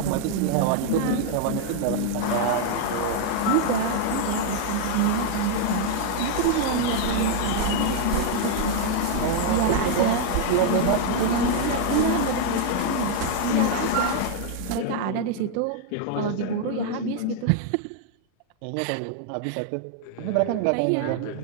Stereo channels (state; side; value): different; both; correlation 0.00